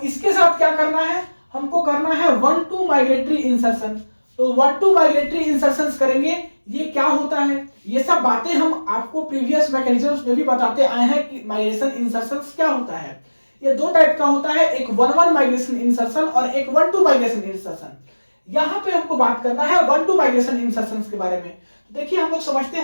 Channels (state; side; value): inverted; both; correlation -1.00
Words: इसके साथ क्या करना है, हमको करना है 1-2 माइग्रेटरी इंसर्शन। तो 1-2 माइग्रेटरी इंसर्शंस करेंगे। ये क्या होता है, ये सब बातें हम आपको प्रीवियस मैकेनिज्म्स में भी बताते आए हैं कि माइग्रेशन इंसर्शंस क्या होता है। ये 2 टाइप का होता है, एक 1-1 माइग्रेशन इंसर्शन और एक 1-2 माइग्रेशन इंसर्शन। यहाँ पे हमको बात करना है 1-2 माइग्रेशन इंसर्शंस के बारे में। तो देखिए हम लोग समझते